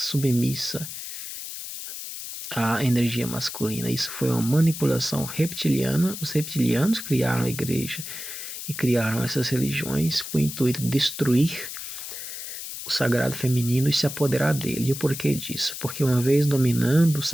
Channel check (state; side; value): noise; left; hiss, 8 dB below the sound